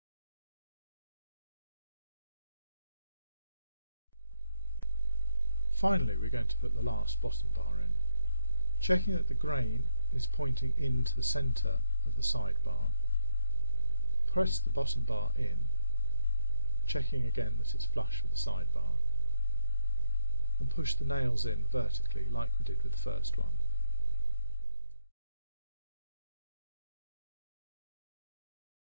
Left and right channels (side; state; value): both; inverted; correlation -0.90